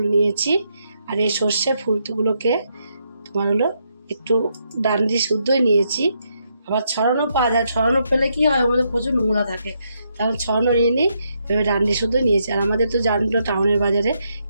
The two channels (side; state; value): both; inverted; correlation -0.78